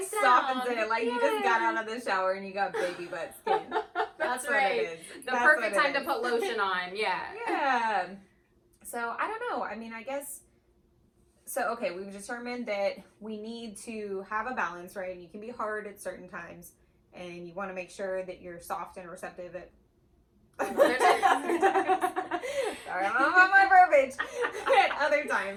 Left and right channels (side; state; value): both; identical; correlation 1.00